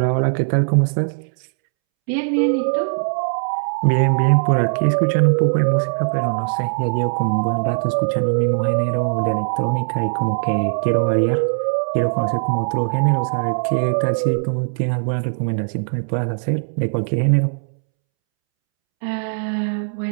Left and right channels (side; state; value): left; silent; 66 dB below the other